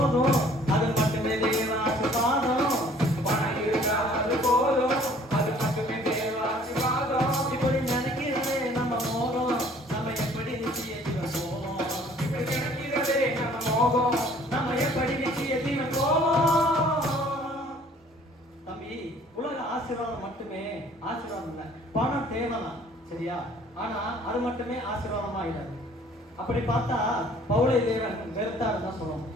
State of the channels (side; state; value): both; normal; correlation 0.55